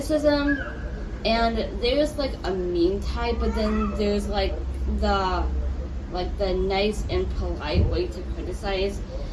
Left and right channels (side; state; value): both; identical; correlation 1.00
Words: and there's like a mean type, but then there's the the nice and polite way to criticize.